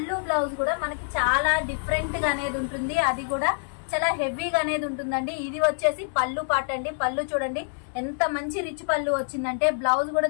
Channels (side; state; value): right; silent; digital silence